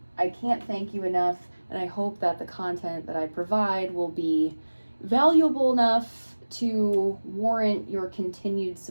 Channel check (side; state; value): both; inverted; correlation -1.00